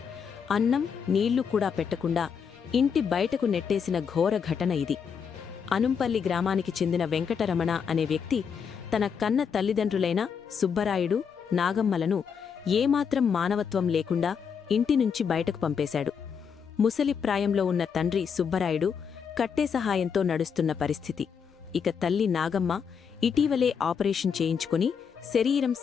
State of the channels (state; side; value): quieter; right; 6.7 dB